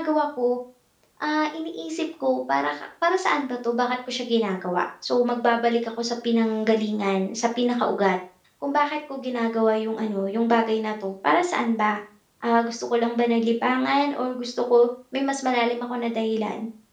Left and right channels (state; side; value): identical; both; correlation 1.00